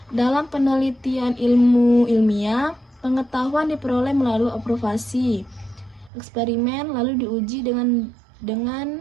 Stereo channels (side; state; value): left; drops out; at 6.1 s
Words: Dalam penelitian ilmu ilmiah, pengetahuan diperoleh melalui observasi, eksperimen, lalu diuji dengan